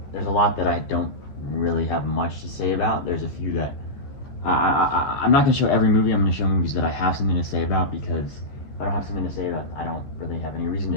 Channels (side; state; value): right; late; 14 ms